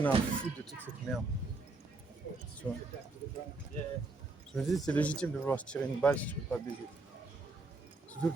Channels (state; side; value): quieter; left; 3.4 dB